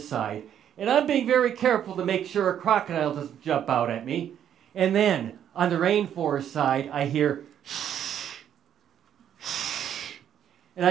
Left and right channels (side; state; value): left; quieter; 9.7 dB